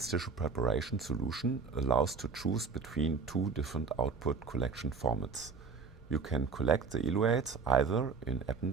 tissue preparation solution allows to choose between 2 different output collection formats. You can collect the eluates either in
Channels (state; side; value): quieter; left; 5.3 dB